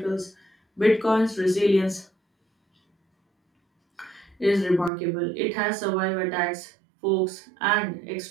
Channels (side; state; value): left; drops out; at 4.9 s